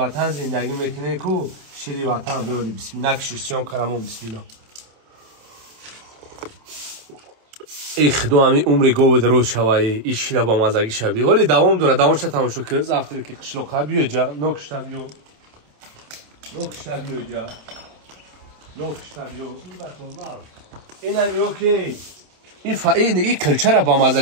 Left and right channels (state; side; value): late; left; 27 ms